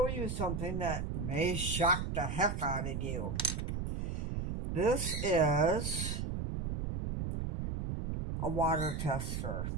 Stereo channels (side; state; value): right; noise; rumble, 3 dB below the sound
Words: you something that may shock the heck out of you. This is a water tester.